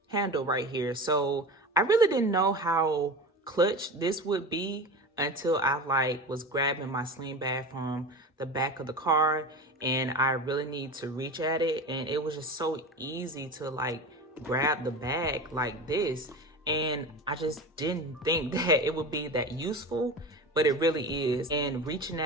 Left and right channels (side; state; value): both; normal; correlation 0.29